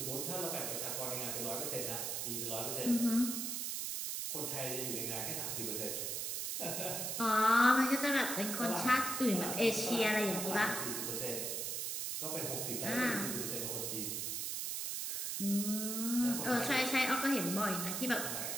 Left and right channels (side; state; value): right; noise; hiss, 2 dB below the sound